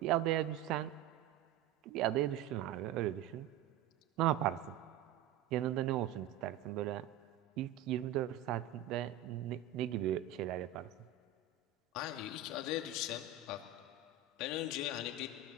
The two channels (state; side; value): quieter; left; 7.1 dB